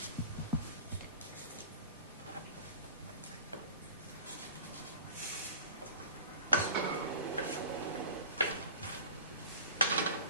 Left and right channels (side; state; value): both; inverted; correlation -0.41